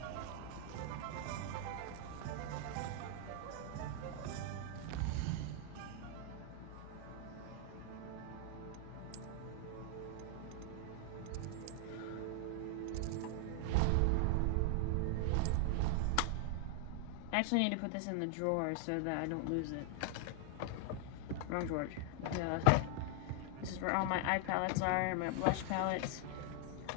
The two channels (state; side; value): different; both; correlation 0.00